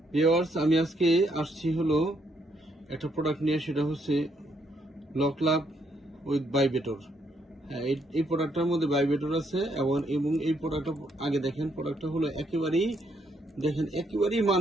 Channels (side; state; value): both; normal; correlation 0.73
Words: ভিউয়ার্স, আমি আজকে আসছি হলো একটা প্রোডাক্ট নিয়ে, সেটা হচ্ছে লকলাভ উইথ ভাইব্রেটর। হ্যাঁ, এই প্রোডাক্টটার মধ্যে ভাইব্রেটর আছে এবং এই প্রোডাক্টটা আগে দেখেন, প্রোডাক্টটা হলো একেবারেই